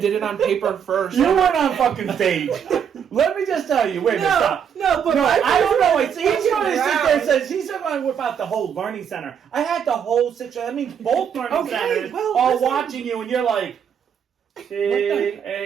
it on paper first. You weren't on fucking stage. Let me just tell you. Wait, stop. No, but I don't know. He's going to sit there and says he's going to whip out the whole learning center. I had the whole situation. That means both learning centers all watching you, and you're like,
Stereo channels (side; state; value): left; quieter; 7.9 dB